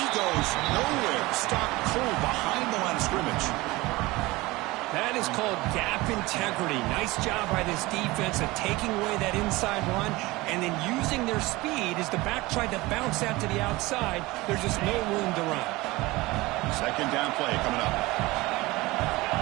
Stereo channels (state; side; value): quieter; left; 20.9 dB